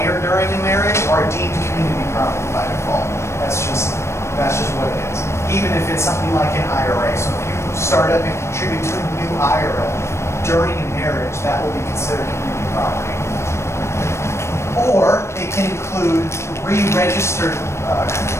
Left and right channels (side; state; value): right; late; 0.13 ms